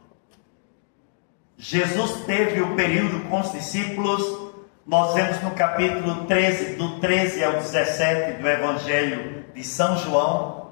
Jesus teve o período com os discípulos. Nós vemos no capítulo 13, do 13 ao 17 do Evangelho de São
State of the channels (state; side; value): silent; right; digital silence